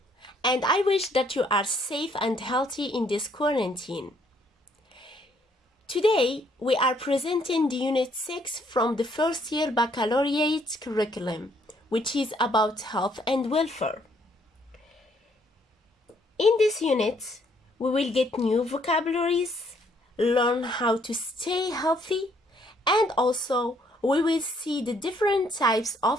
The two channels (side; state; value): both; normal; correlation 0.67